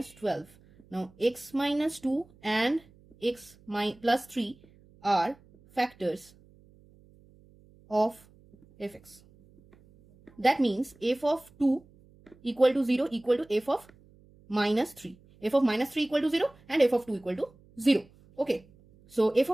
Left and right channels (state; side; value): noise; right; hum, 28 dB below the sound